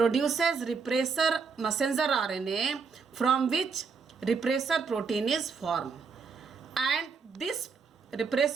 repressor messenger RNA, from which repressor protein is formed. And this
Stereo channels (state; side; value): quieter; left; 5.4 dB